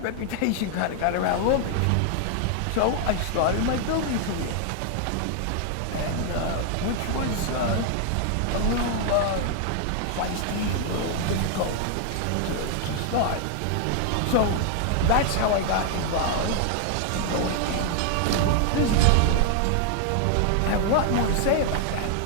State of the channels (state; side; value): different; both; correlation 0.00